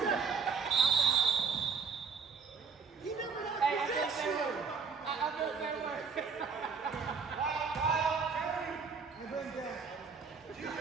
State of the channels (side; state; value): left; quieter; 5.4 dB